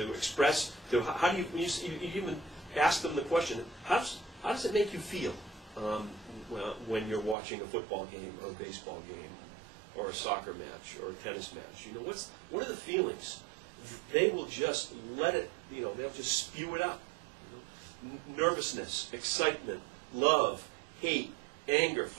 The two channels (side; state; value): left; drops out; at 7.4 s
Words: express. How do you even ask them the question? How does it make you feel when you're watching a football game or a baseball game, or a soccer match, or a tennis match? What are the feelings? They will just let it. They'll just spew it out. Nervousness, excitement, love, hate, anger,